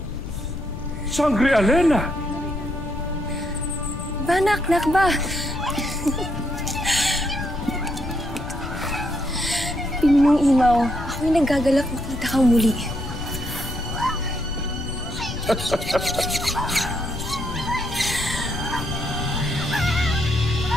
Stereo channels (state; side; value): noise; left; rumble, 9 dB below the sound